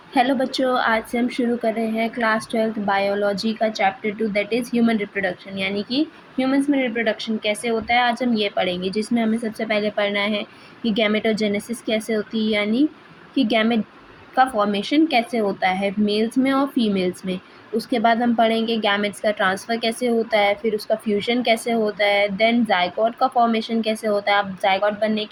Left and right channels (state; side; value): identical; both; correlation 1.00